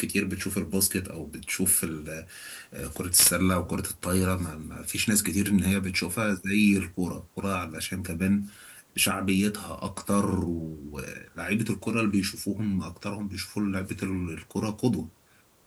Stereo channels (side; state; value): both; identical; correlation 1.00